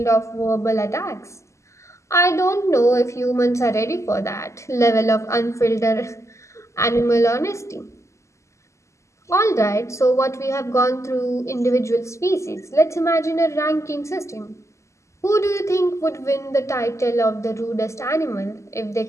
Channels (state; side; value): late; right; 0.14 ms